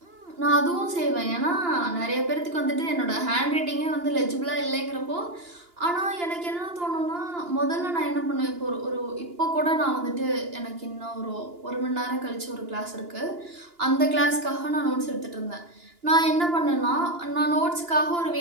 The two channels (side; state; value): left; late; 2.9 ms